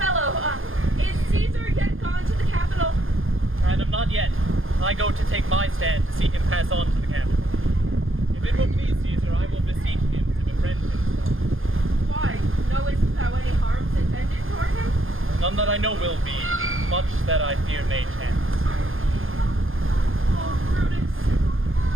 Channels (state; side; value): late; left; 0.60 ms